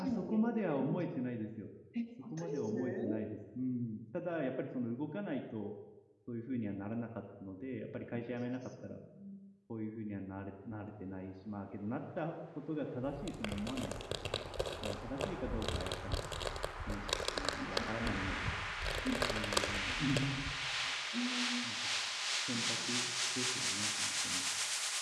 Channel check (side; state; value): both; identical; correlation 1.00